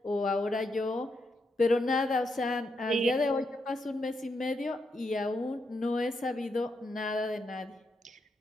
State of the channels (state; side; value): normal; both; correlation 0.82